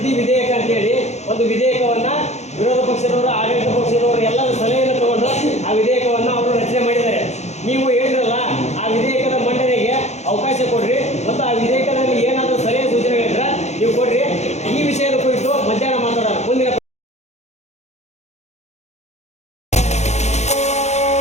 ವಿಧೇಯಕ ಅಂತೇಳಿ ಒಂದು ವಿಧೇಯಕವನ್ನು ವಿರೋಧ ಪಕ್ಷದವರು, ಆಡಳಿತ ಪಕ್ಷದವರು ಎಲ್ಲರ ಸಲಹೆಯನ್ನು ತಗೊಂಡು ಆ ವಿಧೇಯಕವನ್ನು ಅವರು ರಚನೆ ಮಾಡಿದ್ದಾರೆ. ನೀವು ಹೇಳಿದ್ರಲ್ಲ, ಆ ವಿಧೇಯಕದ ಮಂಡನೆಗೆ ಅವಕಾಶ ಕೊಡ್ರಿ ಮತ್ತು ಆ ವಿಧೇಯಕದಲ್ಲಿ ಏನಾದರೂ ಸಲಹೆ ಸೂಚನೆಗಳಿದ್ರೆ ನೀವು ಕೊಡ್ರಿ. ಈ ವಿಷಯದ ಕುರಿತು ಮಧ್ಯಾಹ್ನ ಮಾತಾಡೋಣ. ಮುಂದಿನ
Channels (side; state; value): right; late; 0.33 ms